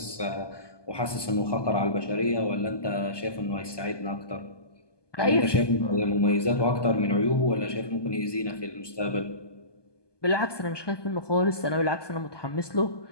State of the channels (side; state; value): right; late; 1.2 ms